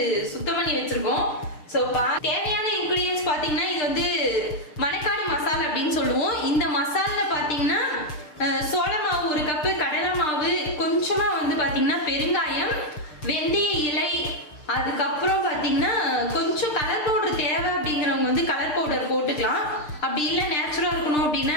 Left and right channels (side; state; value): right; late; 6.7 ms